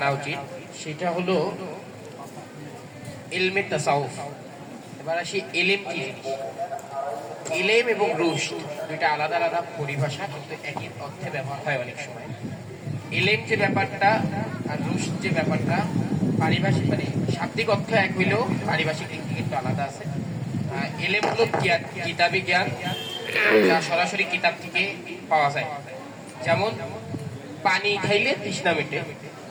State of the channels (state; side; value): identical; both; correlation 1.00